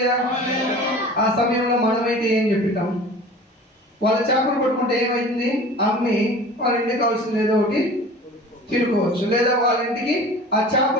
ఆ సమయంలో మనమైతే ఏం చెప్తాం? వాళ్ళ చేపలు పట్టుకుంటే ఏమైంది? అమ్మి వాళ్ళ ఇంటికి కావాల్సింది ఏదో ఒకటి తినుకోవచ్చు, లేదా వాళ్ళ ఇంటికి ఆ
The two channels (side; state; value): both; normal; correlation 0.41